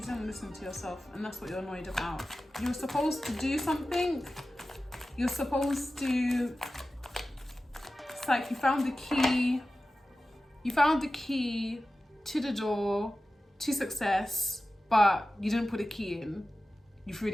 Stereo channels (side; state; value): both; normal; correlation 0.94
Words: didn't listen to yourself, and that's what you're annoyed about. You were supposed to do something. You're supposed to... It's like you found the key. You found the key to the door to success, but you didn't put a key in. You threw